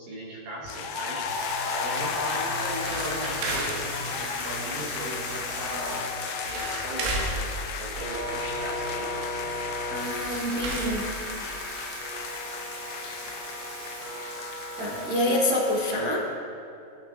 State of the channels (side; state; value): left; late; 20 ms